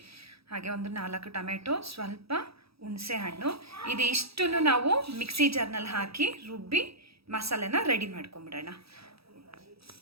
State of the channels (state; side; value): late; left; 0.77 ms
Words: ಹಾಗೆ ಒಂದು 4 ಟೊಮೆಟೊ, ಸ್ವಲ್ಪ ಹುಣಸೆ ಹಣ್ಣು. ಇದಿಷ್ಟನ್ನು ನಾವು ಮಿಕ್ಸಿ ಜಾರ್ನಲ್ಲಿ ಹಾಕಿ ರುಬ್ಬಿ ಮಸಾಲೆನ ರೆಡಿ ಮಾಡ್ಕೊಂಬಿಡೋಣ.